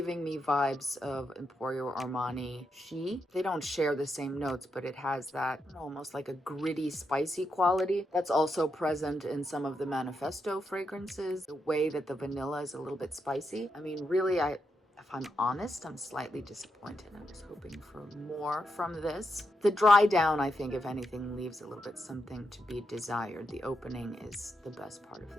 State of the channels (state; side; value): normal; both; correlation 0.83